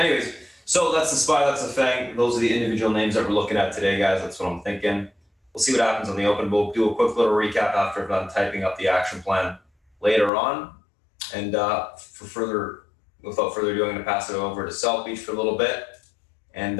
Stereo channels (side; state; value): right; drops out; at 10.3 s